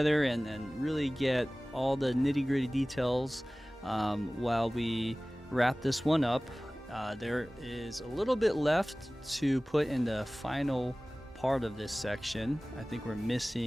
and really get all the nitty-gritty details while we wrap this one up. There is a little bit left to put in the final part of this section. I think we're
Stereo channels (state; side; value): normal; both; correlation 0.98